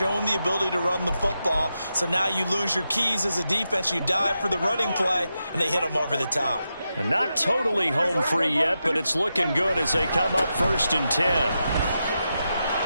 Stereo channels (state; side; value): inverted; both; correlation -0.88